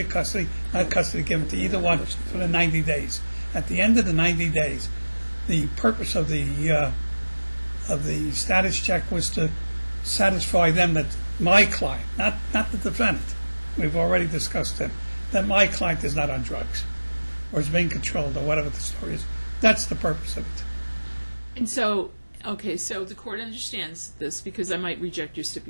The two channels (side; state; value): both; inverted; correlation -1.00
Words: custody, not custody given to either one for the 90 days. At the end of the 90 days, the purpose of the of the status check was to satisfy them that my client, not the defendant, we've already discussed it, that my client is not on drugs or is being controlled or whatever the story is. That's the purpose of it. And so, okay, so the court understands this because I might reject your